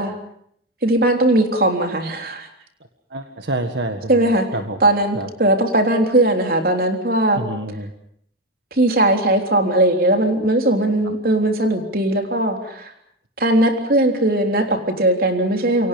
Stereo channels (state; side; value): normal; both; correlation 0.12